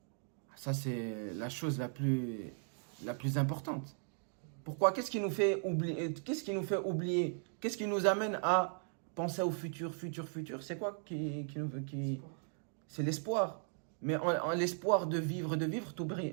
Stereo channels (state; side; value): silent; left; 53 dB below the other